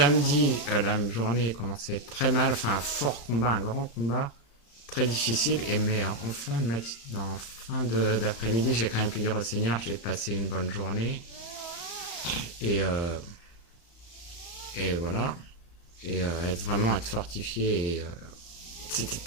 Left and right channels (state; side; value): late; right; 35 ms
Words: la journée commençait à être très mal, enfin un fort combat, un grand combat, très difficile, mais en fin d'après-midi, j'ai quand même pu dire au Seigneur, j'ai passé une bonne journée, et voilà, et être fortifié, et c'était